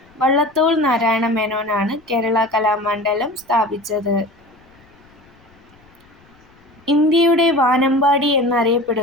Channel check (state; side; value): noise; left; rumble, 30 dB below the sound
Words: വള്ളത്തോൾ നാരായണ മേനോനാണ് കേരള കലാമണ്ഡലം സ്ഥാപിച്ചത്. ഇന്ത്യയുടെ വാനമ്പാടി